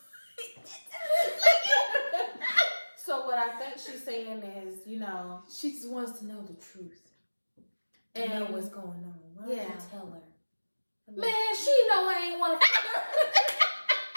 So what I think she's saying is, you know, she just wants to know the truth and know what's going on. Why don't you tell her? Man, she know I ain't want to.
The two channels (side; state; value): both; inverted; correlation -1.00